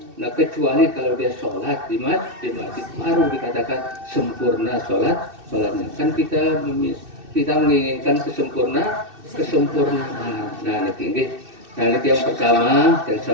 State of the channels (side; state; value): left; late; 2.6 ms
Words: Nah, kecuali kalau dia sholat di masjid baru dikatakan sempurna sholatnya. Kan kita menginginkan kesempurnaan. Nah, ini yang pertama yang